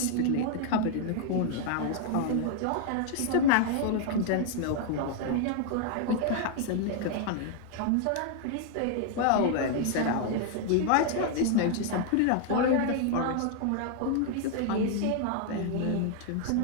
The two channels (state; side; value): different; both; correlation 0.00